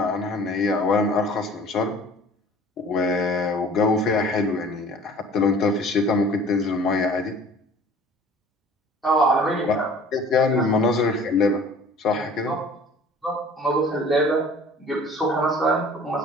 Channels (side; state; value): both; normal; correlation 0.47